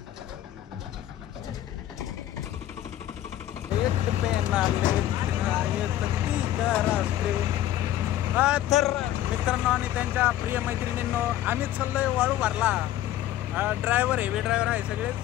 तर मित्रांनो आणि त्यांच्या प्रिय मैत्रिणींनो, आम्ही चाललोय वाळू भरला. ड्रायव्हर हेवी ड्रायव्हर आहे सगळेच.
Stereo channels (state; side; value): quieter; right; 13.0 dB